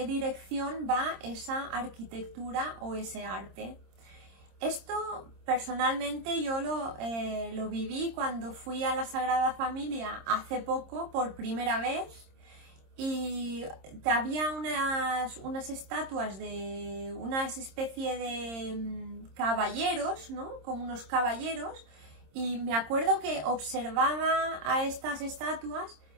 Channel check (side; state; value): left; late; 26 ms